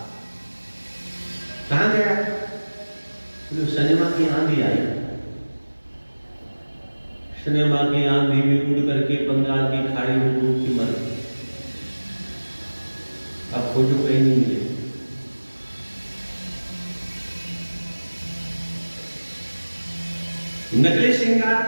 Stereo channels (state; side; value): inverted; both; correlation -1.00